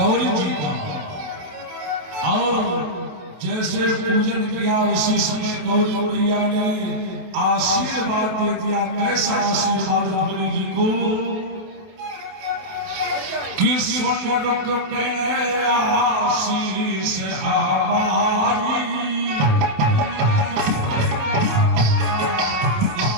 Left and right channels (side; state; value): left; late; 28 ms